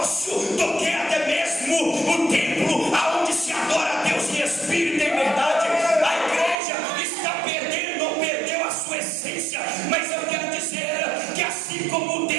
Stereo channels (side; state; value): left; drops out; at 6.6 s